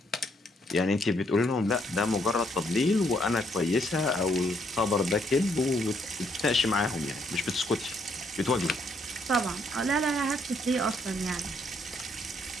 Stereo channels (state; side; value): normal; both; correlation 0.71